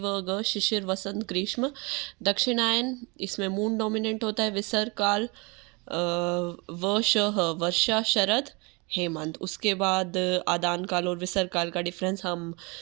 ग शिशिर वसंत ग्रीष्म। दक्षिणायन, इसमें मून डोमिनेंट होता है। विसर्ग काल वर्षा शरद हेमंत। उसके बाद आदान काल और विसर्ग काल का डिफरेंस हम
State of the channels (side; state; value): left; quieter; 28.7 dB